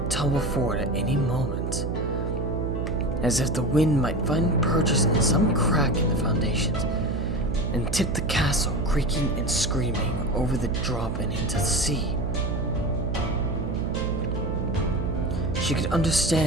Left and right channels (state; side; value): noise; right; hum, 2 dB below the sound